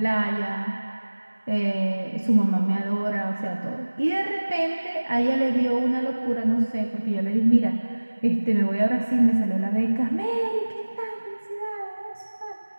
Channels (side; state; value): both; inverted; correlation -1.00